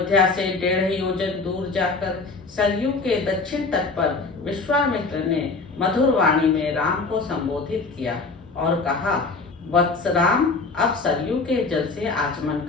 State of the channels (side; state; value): right; quieter; 4.0 dB